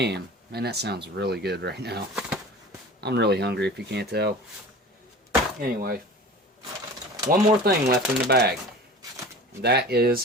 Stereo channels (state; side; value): normal; both; correlation 0.38